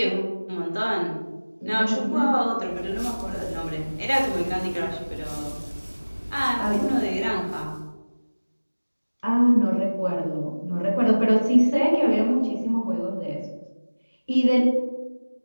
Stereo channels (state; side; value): inverted; both; correlation -1.00